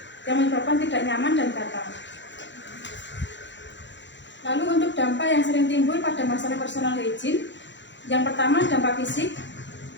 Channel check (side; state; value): right; late; 0.53 ms